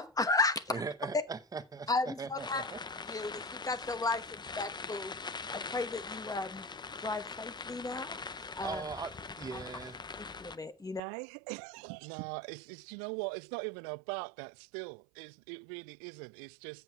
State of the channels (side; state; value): left; drops out; at 11.0 s